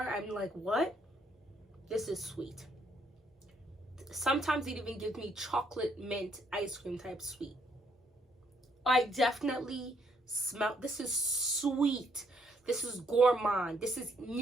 I'm like, what? This is sweet. Sometimes it even gives me chocolate mint ice cream type sweet. I definitely smell, this is sweet. This is gourmand. This is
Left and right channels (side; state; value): both; normal; correlation 0.71